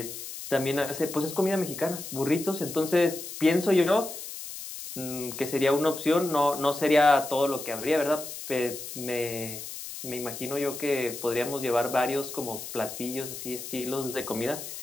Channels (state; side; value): noise; left; hiss, 10 dB below the sound